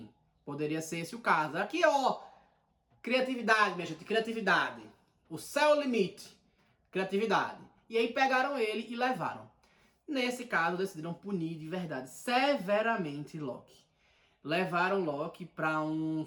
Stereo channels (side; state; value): both; identical; correlation 1.00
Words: poderia ser esse o caso. Aqui, ó, criatividade, minha gente, criatividade. O céu é o limite, criatividade. E aí pegaram ele e levaram. Nesse caso, decidiram punir de verdade, severamente Loki. Levaram Loki para um